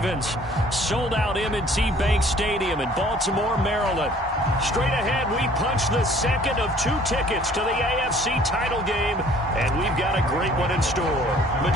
Sold out M&T Bank Stadium in Baltimore, Maryland. Straight ahead, we punch the second of 2 tickets to the AFC title game, and we've got a great one in store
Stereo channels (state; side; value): normal; both; correlation 0.55